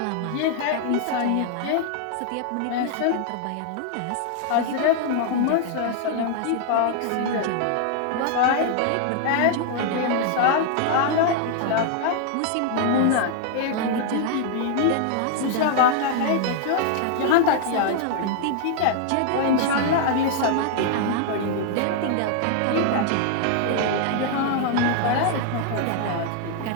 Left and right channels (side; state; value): both; different; correlation 0.00